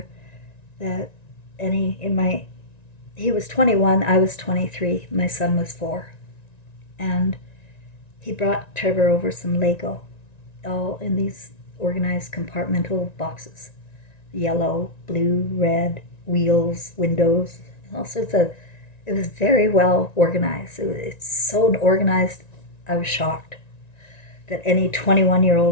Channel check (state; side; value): late; right; 1.9 ms